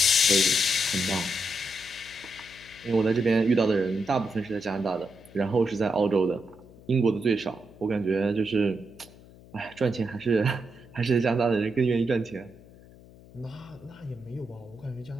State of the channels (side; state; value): left; noise; hum, 22 dB below the sound